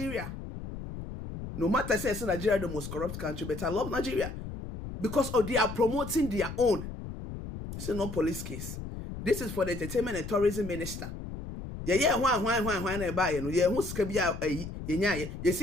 No matter say Nigeria the most corrupt country, but I love Nigeria because they are promoting their own. This is not police case. This is for the entertainment and tourism minister. Yeah, why na buy no? Yeah, who's kabia ye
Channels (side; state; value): left; noise; rumble, 9 dB below the sound